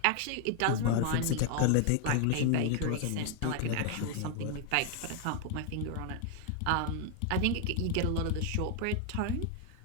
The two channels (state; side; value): different; both; correlation 0.00